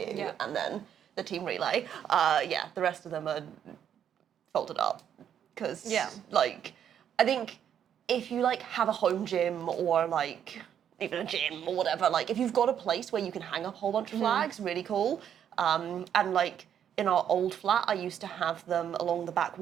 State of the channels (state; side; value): quieter; left; 9.2 dB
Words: Yeah. and then the team relay. Yeah, the rest of them are folded up. Because, like, I think if you, like, have a home gym or, like, even a gym or whatever, like, if you've got a place where you can hang up a whole bunch of flags, really cool. And, like, in our old flat, I used to have them along the back